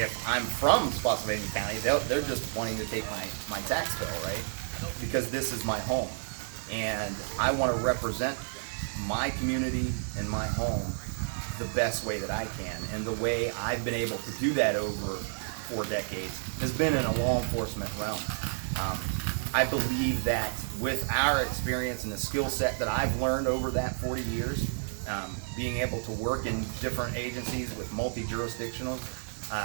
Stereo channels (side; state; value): left; silent; digital silence